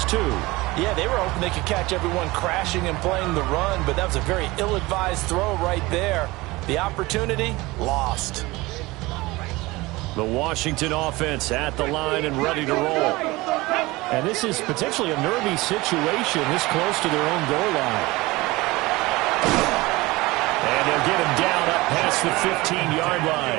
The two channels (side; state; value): left; quieter; 21.2 dB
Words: too. Yeah, they were hoping they could catch everyone crashing and playing the run, but that was a very ill-advised throw right there. The opportunity, lost. The Washington offense at the line and ready to roll. And this is potentially a nervy situation this close to their own goal line. And they'll get him down up past the 15-yard